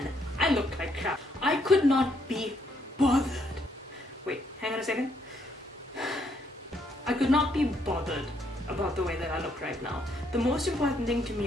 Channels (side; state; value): both; normal; correlation 0.72